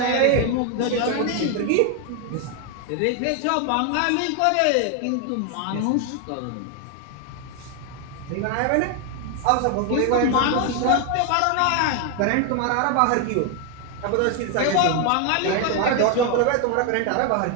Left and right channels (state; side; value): different; both; correlation 0.01